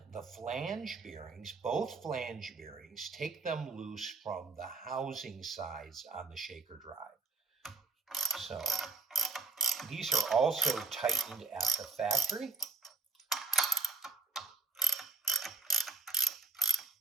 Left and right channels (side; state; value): left; quieter; 4.1 dB